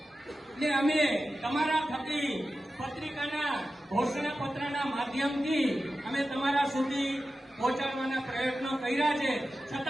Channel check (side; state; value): both; normal; correlation 0.93